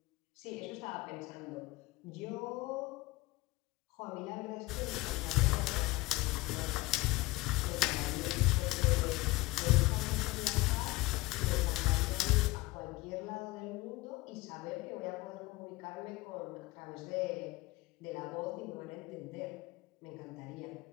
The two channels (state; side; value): quieter; right; 20.7 dB